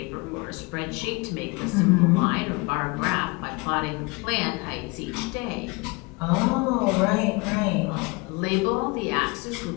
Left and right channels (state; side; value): quieter; right; 27.0 dB